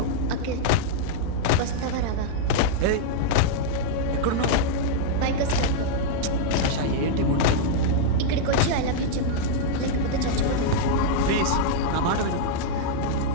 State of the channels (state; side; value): different; both; correlation -0.01